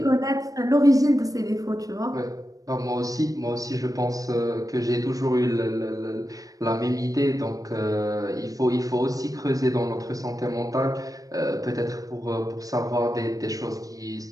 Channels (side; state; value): left; late; 0.17 ms